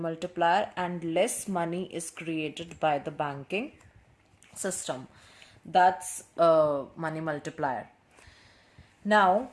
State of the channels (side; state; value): both; identical; correlation 1.00